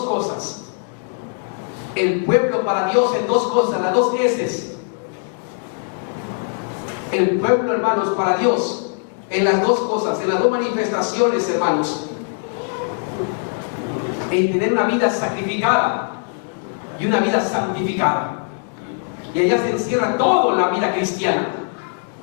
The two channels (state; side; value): silent; right; 61 dB below the other